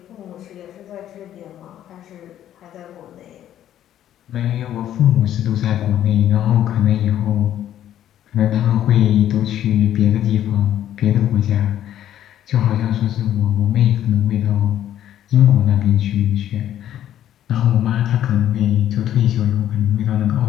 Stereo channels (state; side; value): quieter; right; 11.4 dB